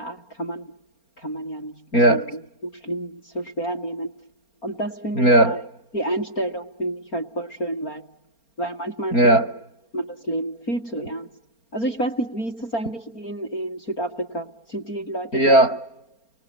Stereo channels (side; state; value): right; late; 4.3 ms